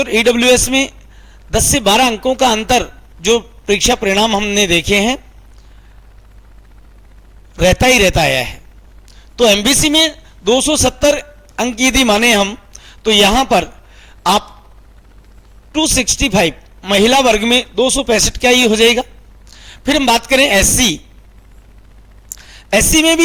ईडब्ल्यूएस में 10 से 12 अंकों का अंतर जो परीक्षा परिणाम हमने देखे हैं रहता ही रहता आया है। तो एमबीसी में 270 अंक यदि माने हम तो यहां पर आप 265 महिला वर्ग में 265 का ही हो जाएगा। फिर हम बात करें एससी, एससी में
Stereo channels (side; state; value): both; identical; correlation 1.00